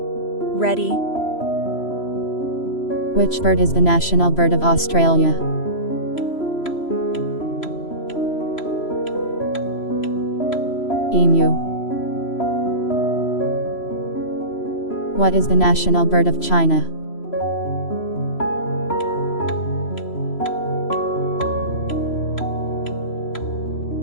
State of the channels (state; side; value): late; right; 3.0 ms